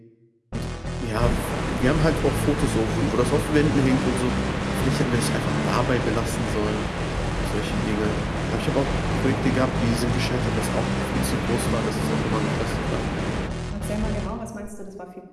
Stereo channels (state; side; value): identical; both; correlation 1.00